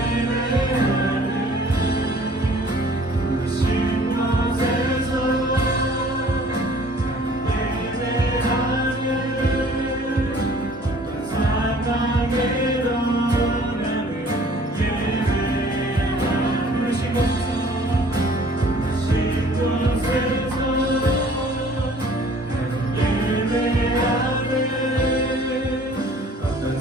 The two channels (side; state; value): both; normal; correlation 0.53